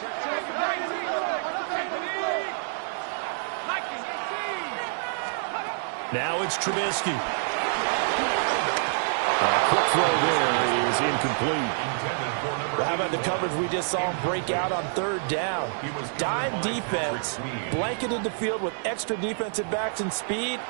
Now it's Trubisky. A quick throw there is incomplete. How about the coverage we just saw him break out on third down? Dime defense, blanketed the field with extra defensive backs and speed,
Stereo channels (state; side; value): silent; left; 60 dB below the other